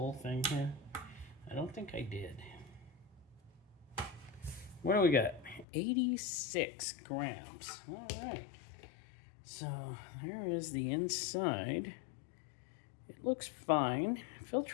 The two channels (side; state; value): right; drops out; at 5.7 s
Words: thing here? I don't think I did. What do we got? 86 grams. All right. So there is the inside. It looks fine.